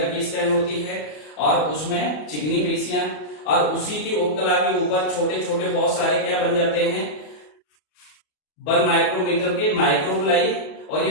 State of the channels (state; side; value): late; right; 33 ms